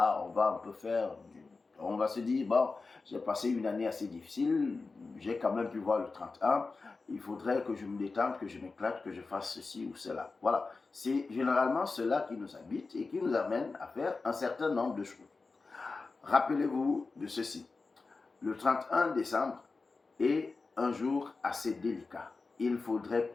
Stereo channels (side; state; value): right; quieter; 4.0 dB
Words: on va un peu on va se dire, bon, j'ai passé une année assez difficile, j'ai quand même pu voir le 31, il faudrait que je me détende, que je m'éclate, que je fasse ceci ou cela. Voilà, c'est généralement cela qui nous habite et qui nous amène à faire un certain nombre de choses. Rappelez-vous de ceci. le 31 décembre est un jour assez délicat. Il faudrait